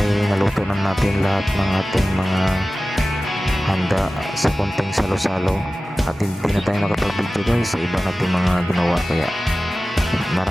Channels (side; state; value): both; normal; correlation 0.96